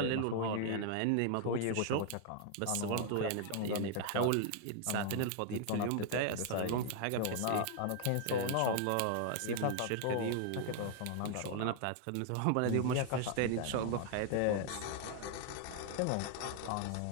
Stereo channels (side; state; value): both; different; correlation 0.00